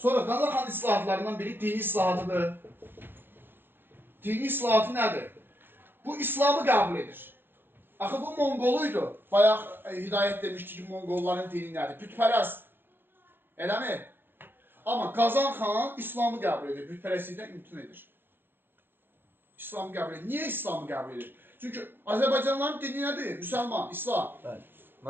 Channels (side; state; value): left; late; 0.11 ms